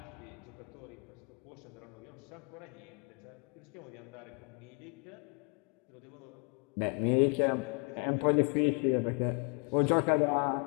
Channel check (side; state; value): right; quieter; 35.2 dB